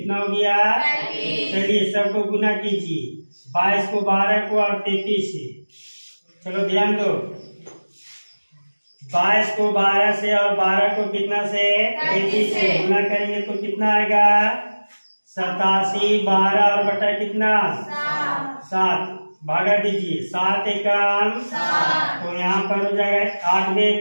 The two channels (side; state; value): both; inverted; correlation -1.00